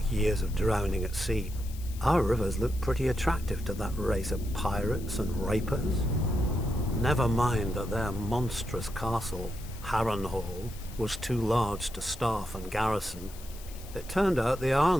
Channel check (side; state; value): left; noise; hiss, 18 dB below the sound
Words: years of drowning at sea, our rivers look pretty attractive to that race of pirates and rapers. Never mind that their monstrous castle, Harrenhal, was too large to staff and garrison. It turned out the